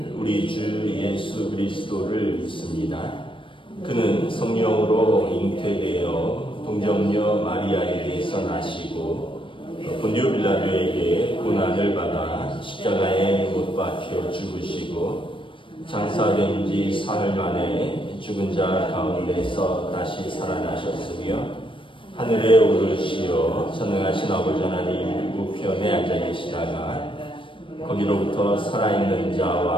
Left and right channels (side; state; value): right; late; 0.25 ms